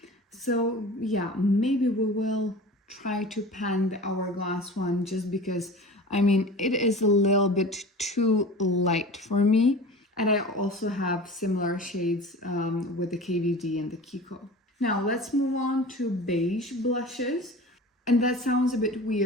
So yeah, maybe we will try to pan the Hourglass one, just because, I mean, it is a little bit too light for me. And I also have similar shades with the KVD and the Kiko. Now let's move on to beige blushes. And that sounds a bit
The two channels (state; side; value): normal; both; correlation 0.37